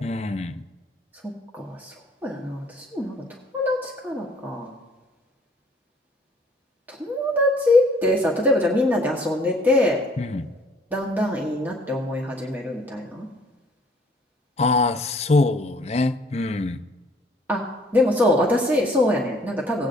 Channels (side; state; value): both; normal; correlation 0.59